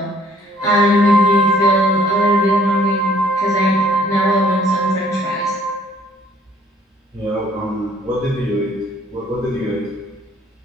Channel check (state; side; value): normal; both; correlation 0.60